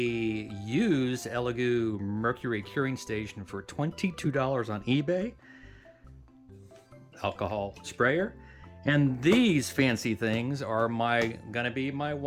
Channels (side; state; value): both; identical; correlation 1.00